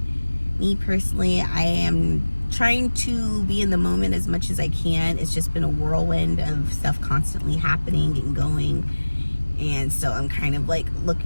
Me personally, I am trying to be in the moment as much as I can. It's just been a whirlwind of stuff constantly happening and going. And so I'm kind of like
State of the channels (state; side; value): inverted; both; correlation -1.00